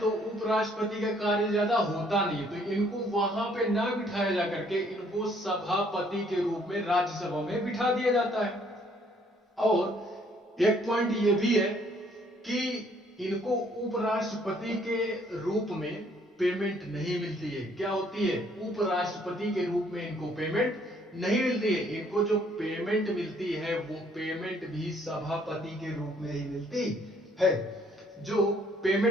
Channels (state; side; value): normal; both; correlation 0.64